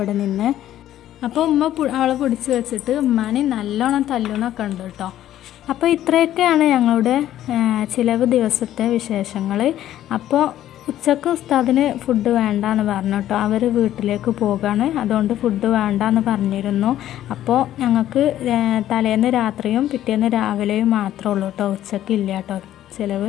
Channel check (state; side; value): quieter; right; 12.5 dB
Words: നിന്ന്. അപ്പോൾ ഉമ്മ അവളെ പിടിച്ച് വെച്ചിട്ട് ഉമ്മാനെ നല്ലോണം തല്ലുന്നൊക്കെ ഉണ്ട് കേട്ടോ. അപ്പോൾ ഇത്രയൊക്കെയാണ് ഞങ്ങളുടെ ചിലവ് ദിവസത്തെ വിശേഷങ്ങൾ. അപ്പോൾ ഉച്ചക്ക് ഉസ്താദിന് ഫുഡ് വേണ്ടാന്ന് പറഞ്ഞു കേട്ടോ. അവർ വീട്ടിലേക്ക് പോകാണ്. അതുകൊണ്ട് ഫുഡ് വേണ്ടാന്ന് പറഞ്ഞിരുന്നു. അപ്പോൾ ഞങ്ങൾക്ക് തലേന്ന് രാത്രിയും പിറ്റേന്ന് രാവിലെയും മാത്രമേ ഉള്ളൂ കേട്ടോ. ഉച്ചക്ക് ഇല്ല കേട്ടോ ചിലവ്.